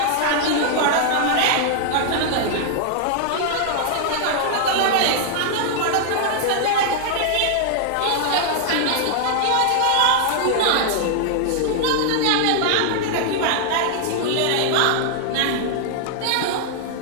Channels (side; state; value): both; different; correlation -0.01